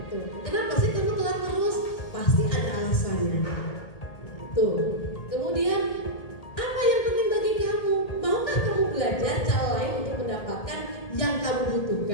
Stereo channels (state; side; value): late; right; 1.8 ms